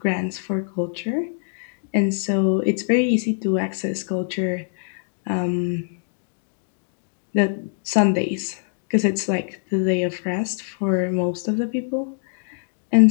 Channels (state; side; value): silent; right; digital silence